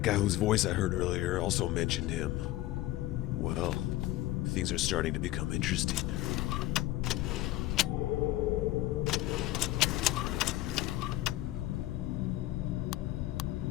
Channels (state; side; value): quieter; right; 16.1 dB